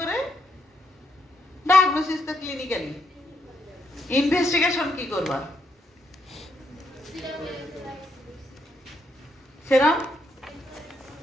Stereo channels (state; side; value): normal; both; correlation 0.77